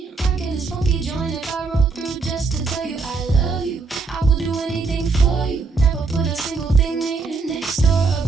rocking this funky joint. If I roll through just to tell you I love you, I will do anything for you. Never put a single thing near, next door,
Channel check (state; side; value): quieter; left; 4.4 dB